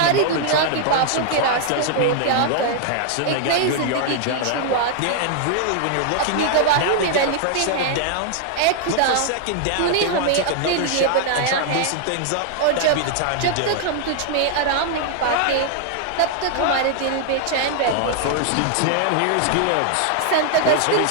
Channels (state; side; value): different; both; correlation 0.00